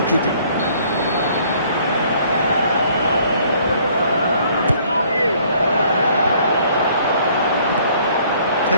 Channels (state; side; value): inverted; both; correlation -0.60